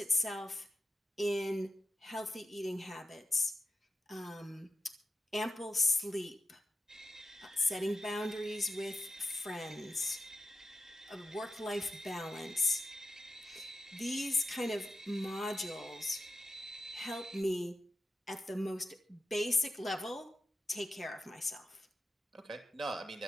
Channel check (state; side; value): normal; both; correlation 0.90